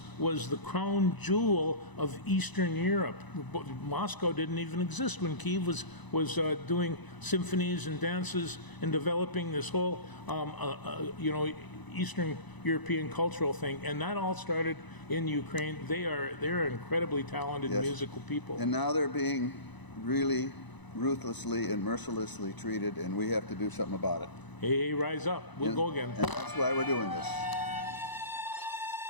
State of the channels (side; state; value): right; late; 1.0 ms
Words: the crown jewel of Eastern Europe. Moscow didn't even exist when Kyiv was doing symphonies and dances and developing this whole, Eastern European cultural thing, and that all started in Ukraine. They're incredibly talented Yes. musical people. And now they're being really ruthlessly and mercilessly treated, and we have to do something about it. Hey, rise up! We'll go again. And that's why we're doing this.